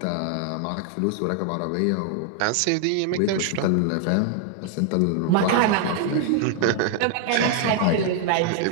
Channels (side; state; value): both; different; correlation 0.00